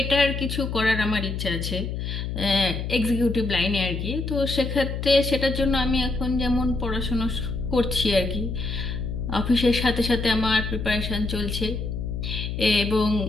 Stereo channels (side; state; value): left; noise; hum, 4 dB below the sound